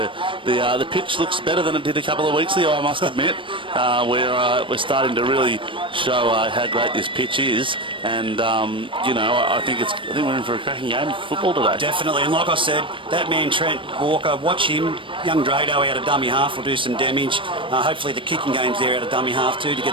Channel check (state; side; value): late; left; 0.25 ms